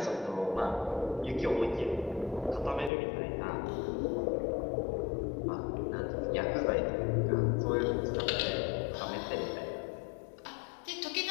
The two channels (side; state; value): right; drops out; at 2.9 s